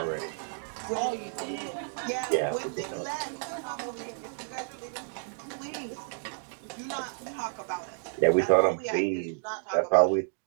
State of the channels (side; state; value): left; silent; 57 dB below the other